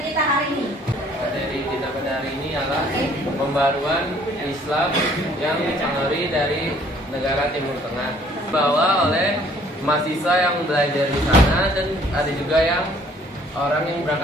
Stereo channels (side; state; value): both; normal; correlation 0.59